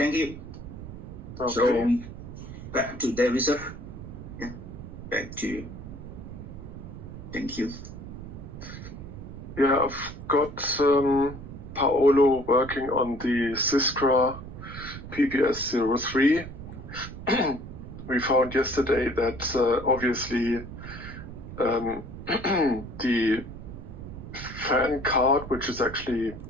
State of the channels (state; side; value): noise; right; rumble, 11 dB below the sound